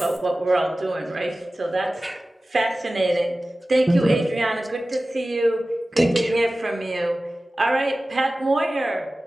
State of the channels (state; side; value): normal; both; correlation 0.96